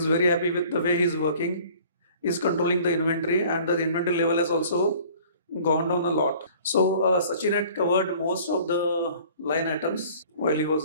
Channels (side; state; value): both; inverted; correlation -0.50